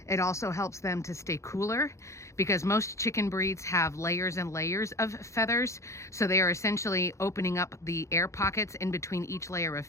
It also helps them to stay cooler because most chicken breeds have layers and layers of feathers. So they are essentially opening up the air pockets in between each layer of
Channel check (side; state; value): right; late; 0.14 ms